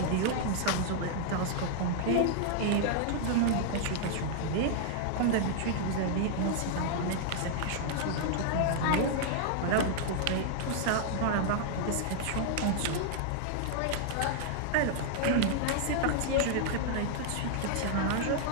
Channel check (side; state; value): both; different; correlation -0.01